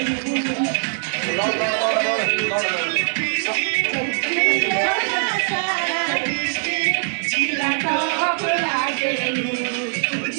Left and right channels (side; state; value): left; silent; digital silence